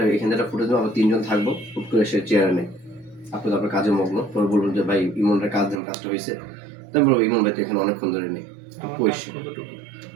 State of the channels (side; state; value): left; drops out; at 5.8 s